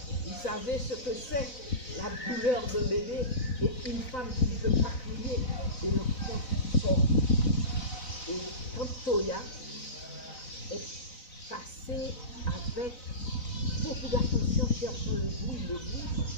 vous savez ce que c'est la douleur d'un bébé et une femme qui ne peut pas crier et l'enfant sort. Et quand Toya est passée avec beaucoup d'attention cherchant le bruit parce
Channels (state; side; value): late; right; 4.0 ms